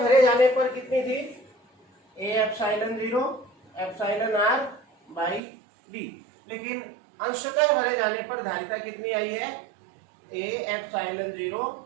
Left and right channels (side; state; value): left; drops out; at 5.4 s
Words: भरे जाने पर कितनी थी, ए epsilon 0 epsilon r by D, लेकिन अंशतः भरे जाने पर धारिता कितनी आई है, ए epsilon 0